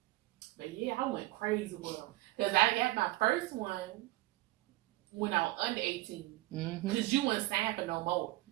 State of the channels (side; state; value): left; quieter; 18.9 dB